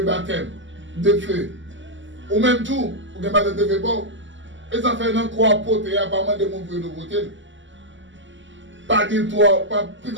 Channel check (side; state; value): left; late; 0.54 ms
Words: baptême de feu. Ou même tout, pour que le baptême de feu bon. Et ça fait un croix pote et apparemment de mon peu de côté. Pas dire toi, pas